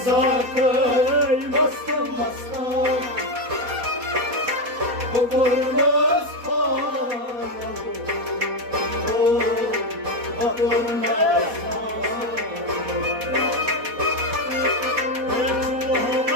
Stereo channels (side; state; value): left; late; 4.1 ms